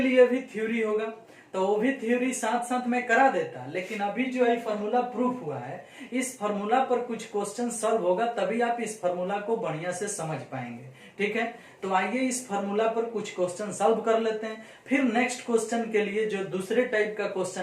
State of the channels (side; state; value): both; identical; correlation 1.00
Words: भी थ्योरी होगा। तो वो भी थ्योरी साथ साथ में करा देता, लेकिन अभी जो है फॉर्मूला प्रूफ हुआ है, इस फॉर्मूला पर कुछ क्वेश्चन सॉल्व होगा तभी आप इस फॉर्मूला को बढ़िया से समझ पाएंगे। ठीक है, तो आइए इस फॉर्मूला पर कुछ क्वेश्चन सॉल्व कर लेते हैं, फिर नेक्स्ट क्वेश्चन के लिए जो दूसरे टाइप का